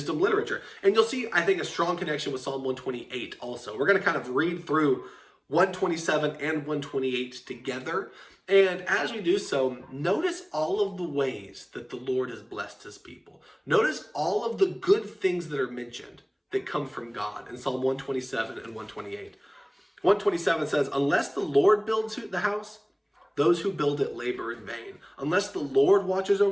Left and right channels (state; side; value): identical; both; correlation 1.00